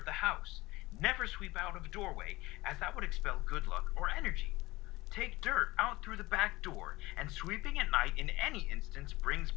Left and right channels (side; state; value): right; quieter; 20.1 dB